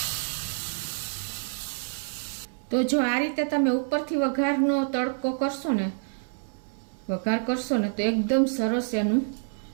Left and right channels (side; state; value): left; silent; 56 dB below the other